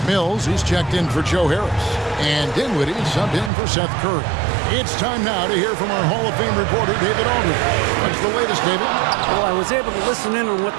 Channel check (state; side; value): drops out; left; at 3.5 s